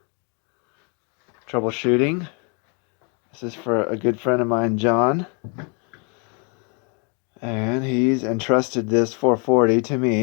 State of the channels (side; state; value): right; quieter; 35.3 dB